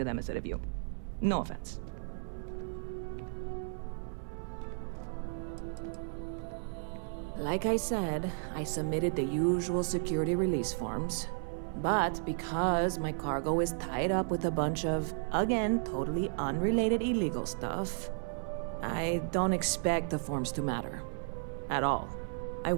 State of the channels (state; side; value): silent; left; 55 dB below the other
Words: them instead of you. No offense. Like I said, I submitted the usual security release forms. But because my cargo is tied up with a bunch of, again, totally unrelated illegal stuff, I don't expect the forms to matter. At all. I